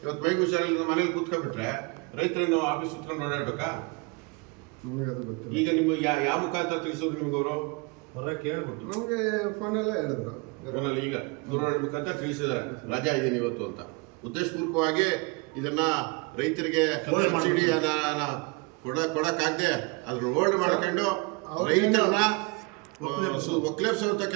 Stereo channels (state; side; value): quieter; left; 28.4 dB